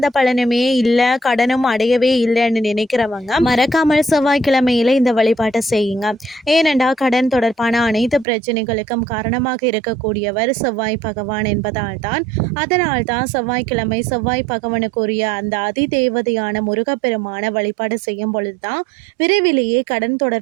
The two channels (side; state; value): left; drops out; at 8.2 s